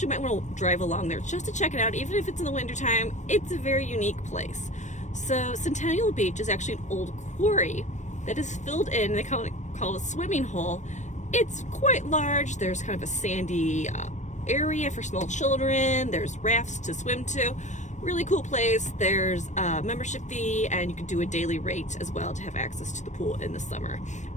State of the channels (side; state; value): right; late; 0.35 ms